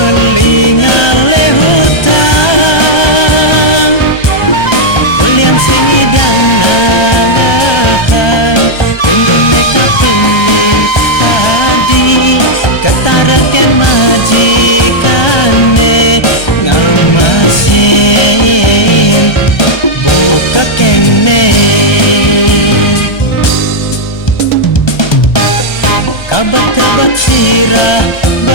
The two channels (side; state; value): right; late; 1.3 ms